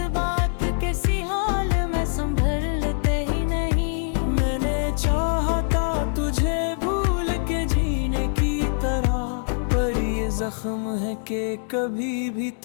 कैसी हाल में संभलते ही नहीं। मैंने चाहा था तुझे भूल के जीने की तरह, पर ये जख्म है कि कभी भी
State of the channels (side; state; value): right; silent; digital silence